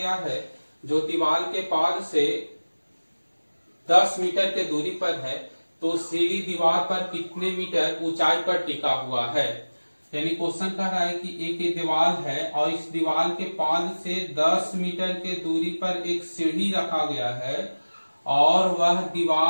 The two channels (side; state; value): both; inverted; correlation -1.00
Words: है जो दीवार के पाद से 10 मीटर के दूरी पर है, तो सीढ़ी दीवार पर कितने मीटर ऊंचाई पर टिका हुआ है। यानी क्वेश्चन कह रहा है कि एक दीवार है और इस दीवार के पाद से 10 मीटर के दूरी पर एक सीढ़ी रखा गया है और वह